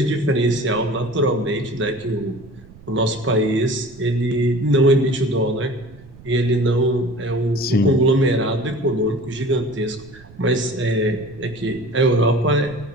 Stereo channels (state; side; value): noise; right; rumble, 21 dB below the sound